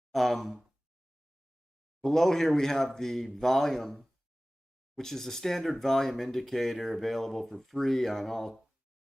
Below here we have the volume, which is a standard volume indicator available for free on all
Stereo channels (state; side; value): normal; both; correlation 0.98